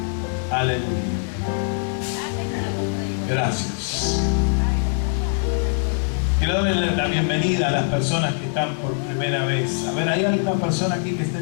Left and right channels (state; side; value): silent; right; digital silence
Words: Aleluya. Gracias. Quiero darle la bienvenida a las personas que están por primera vez. A ver, ¿hay alguna persona aquí que esté